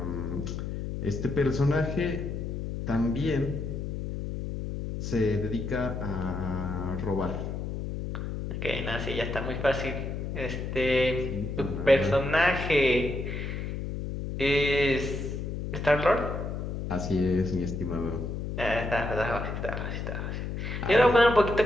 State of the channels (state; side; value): noise; left; hum, 4 dB below the sound